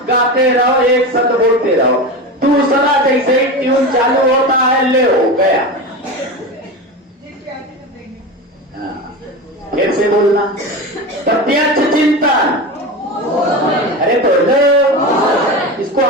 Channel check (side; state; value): both; normal; correlation 0.24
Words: गाते रहो, एक शब्द बोलते रहो। दूसरा जैसे ही ट्यून चालू होता है, ले हो गया। फिर से बोलना, प्रत्यक्ष चिंतन। अरे तो लो, इसको